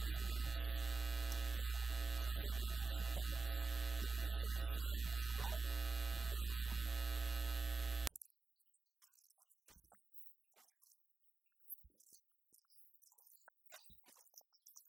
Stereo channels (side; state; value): left; quieter; 4.0 dB